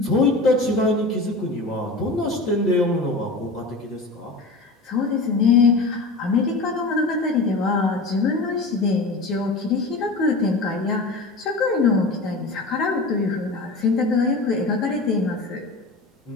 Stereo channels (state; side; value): quieter; right; 3.2 dB